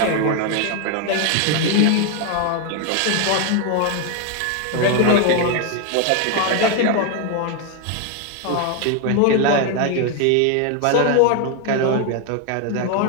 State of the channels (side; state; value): both; different; correlation 0.01